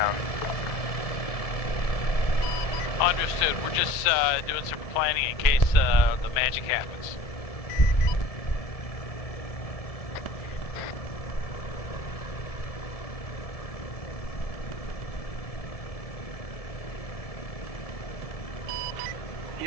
Understood. We're just doing some planning in case the magic happens.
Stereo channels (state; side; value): late; right; 1.7 ms